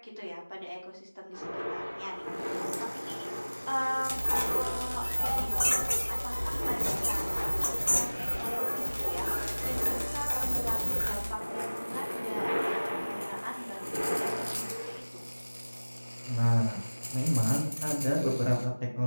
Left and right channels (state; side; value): inverted; both; correlation -1.00